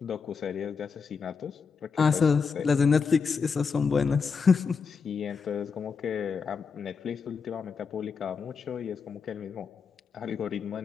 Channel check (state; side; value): quieter; right; 5.6 dB